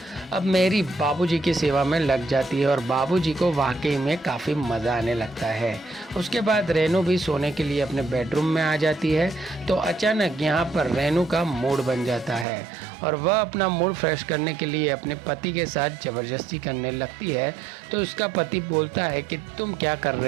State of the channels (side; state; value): left; drops out; at 12.5 s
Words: अब मैरी बाबूजी की सेवा में लग जाती है और बाबूजी को वाकई में काफ़ी मज़ा आने लगता है। उसके बाद रेनू भी सोने के लिए अपने बेडरूम में आ जाती है। तो अचानक यहाँ पर रेनू का मूड बन जाता है और वह अपना मूड फ्रेश करने के लिए अपने पति के साथ ज़बरदस्ती करने लगती है। तो उसका पति बोलता है कि तुम क्या कर